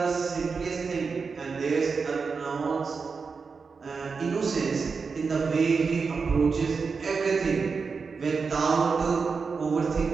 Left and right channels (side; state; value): left; quieter; 5.0 dB